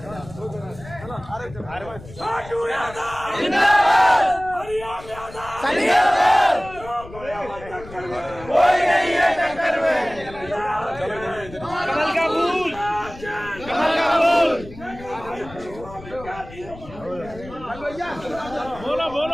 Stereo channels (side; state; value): left; noise; rumble, 17 dB below the sound